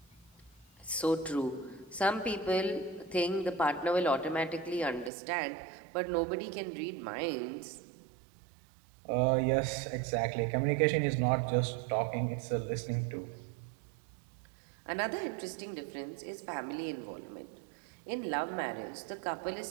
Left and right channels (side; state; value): left; drops out; at 5.1 s